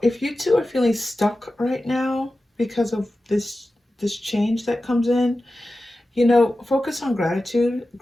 you two are feeling stuck right now because of this change that comes in, focus on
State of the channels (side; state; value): both; normal; correlation 0.94